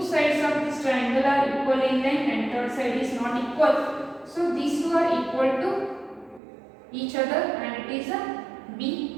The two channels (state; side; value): drops out; left; at 6.4 s